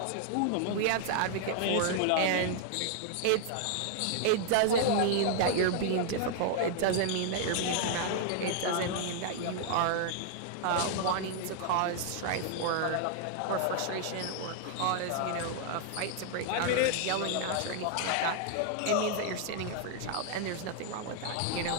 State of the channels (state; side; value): different; both; correlation 0.00